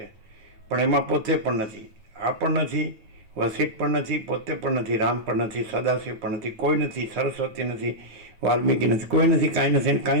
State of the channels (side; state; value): left; late; 9.2 ms